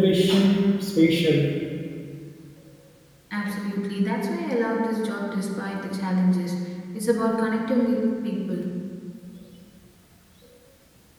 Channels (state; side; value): identical; both; correlation 1.00